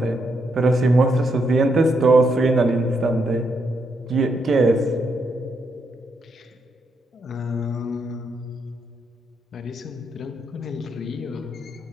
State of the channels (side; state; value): both; normal; correlation 0.79